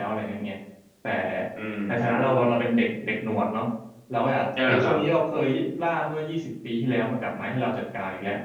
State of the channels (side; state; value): both; identical; correlation 1.00